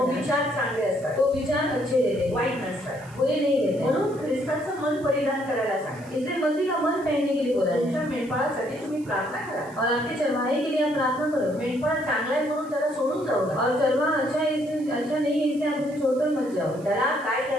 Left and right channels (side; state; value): right; noise; hiss, 25 dB below the sound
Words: है विचार चांगले असतात, तो विचार अच्छे रहते हैं, वाईट नसतात। बुरे नहीं रहते। म्हणून ख्रिस्ताचं मन परिधान करायला सांगा। इसलिए मसीह का मन पहनने के लिए बोला तुमच्या है। मेंढपाळासाठी तुम्ही प्रार्थना करा। और आपके चरवाहे के लिए आप प्रार्थना करो। मेंढपाळ चांगला आहे म्हणून त्याला सोडून जाऊ नका। और चरवाहा अच्छा है इसलिए अच्छा नहीं है इसलिए आप उसे छोड़कर मत जाओ। त्याला काय